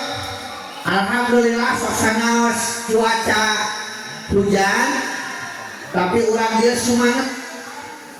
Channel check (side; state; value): both; identical; correlation 1.00